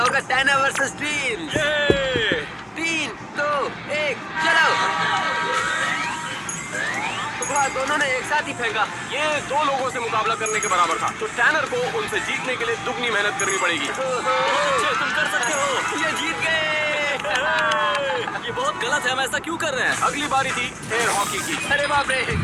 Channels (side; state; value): both; identical; correlation 1.00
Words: टैनर वर्सेस टीम। ये 3, 2, 1, चलो। वाह, दोनों ने एक साथ ही फेंका। ये 2 लोगों से मुकाबला करने के बराबर था, तो टैनर को उनसे जीतने के लिए दुगनी मेहनत करनी पड़ेगी। तुम कर सकते हो। ये जीत गए। ये बहुत गलत है। हम ऐसा क्यों कर रहे हैं? अगली बारी थी एयर हॉकी की। अरे बाप रे,